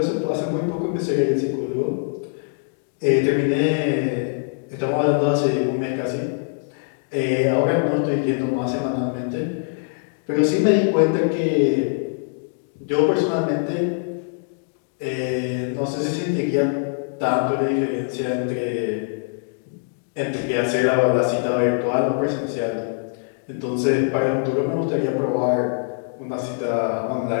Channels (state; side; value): silent; right; digital silence